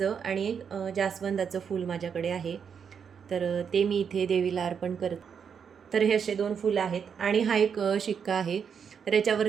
आणि एक जास्वंदाचं फूल माझ्याकडे आहे, तर ते मी इथे देवीला अर्पण करते. तर हे असे 2 फुलं आहेत आणि हा एक शिक्का आहे. तर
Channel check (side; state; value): left; quieter; 7.0 dB